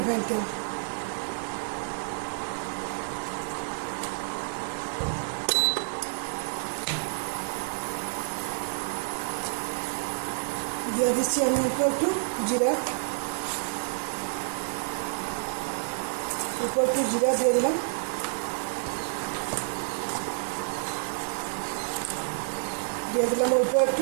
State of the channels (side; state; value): left; silent; digital silence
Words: তেল। দিয়ে দিচ্ছি আমি একটু জিরা, একটু জিরা দিয়ে দিলাম। দিয়ে দিলাম অল্প